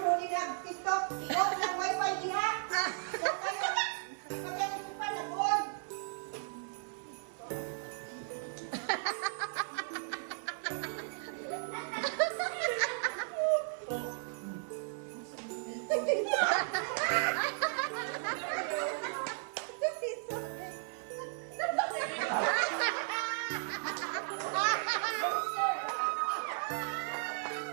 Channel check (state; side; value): silent; left; digital silence